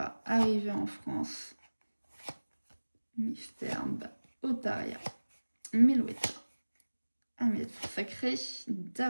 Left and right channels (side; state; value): both; inverted; correlation -1.00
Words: arriver en France. Mystère, Otaria, Melouetta, Ahmed Sacré,